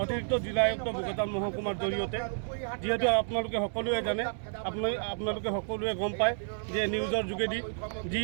অতিৰিক্ত জিলা আয়ুক্ত বোকাজান মহকুমাৰ জৰিয়তে। যিহেতু আপোনালোকে সকলোৱে জানে, আপোনালোকে সকলোৱে গম পায় যে নিউজৰ যোগেদি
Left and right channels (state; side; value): silent; left; 57 dB below the other